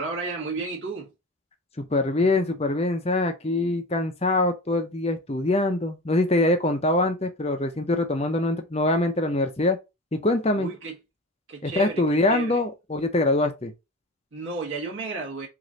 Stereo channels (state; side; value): normal; both; correlation 0.32